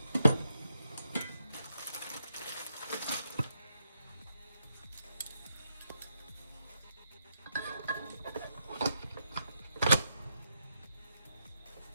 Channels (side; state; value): both; inverted; correlation -0.82